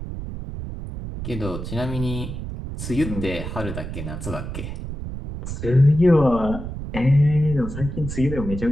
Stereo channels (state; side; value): noise; right; rumble, 7 dB below the sound